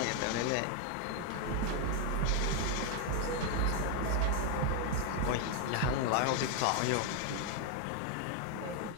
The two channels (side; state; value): both; different; correlation 0.00